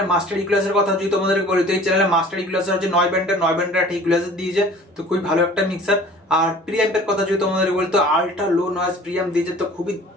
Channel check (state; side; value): normal; both; correlation 0.47